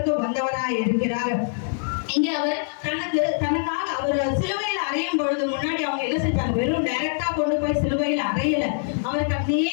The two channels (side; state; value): right; silent; 63 dB below the other